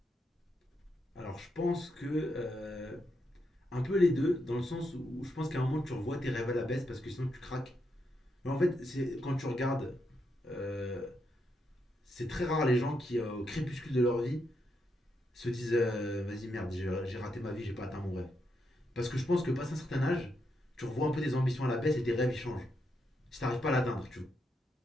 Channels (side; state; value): both; normal; correlation 0.81